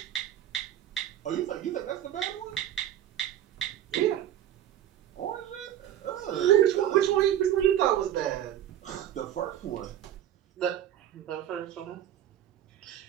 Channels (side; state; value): left; quieter; 11.3 dB